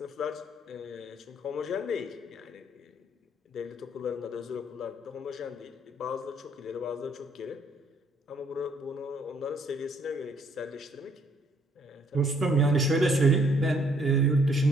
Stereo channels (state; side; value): normal; both; correlation 0.65